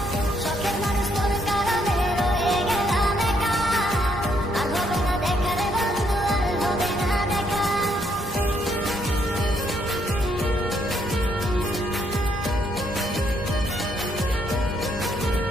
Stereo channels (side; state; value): both; normal; correlation 0.73